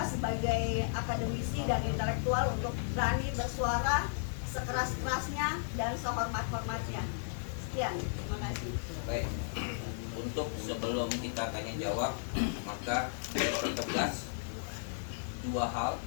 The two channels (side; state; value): right; silent; digital silence